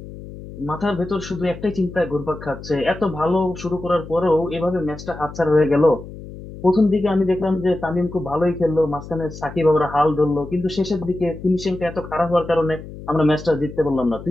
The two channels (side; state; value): left; noise; hum, 13 dB below the sound